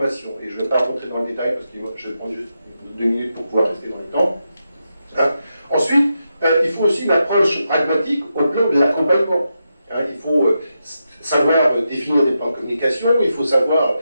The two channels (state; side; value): inverted; both; correlation -0.86